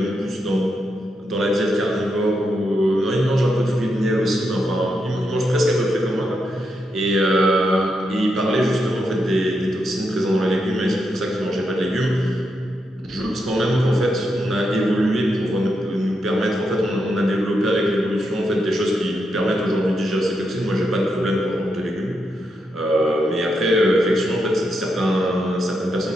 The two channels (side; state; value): both; normal; correlation 0.83